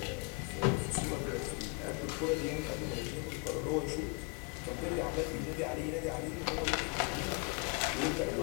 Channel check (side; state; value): right; quieter; 32.8 dB